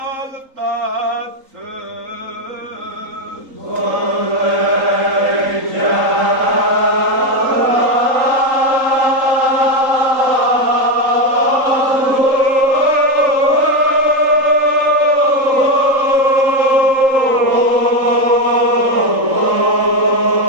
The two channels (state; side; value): late; left; 3.8 ms